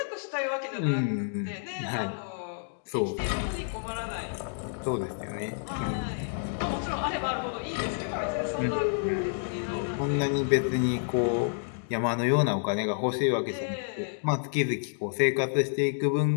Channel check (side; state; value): right; silent; digital silence